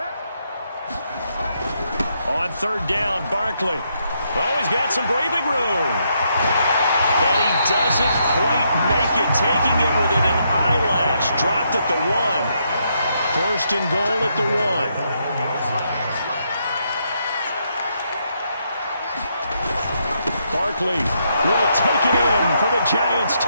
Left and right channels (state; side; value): inverted; both; correlation -0.77